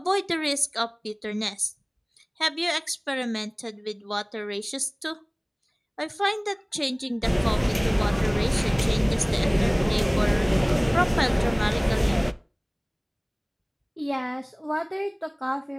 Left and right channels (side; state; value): both; identical; correlation 1.00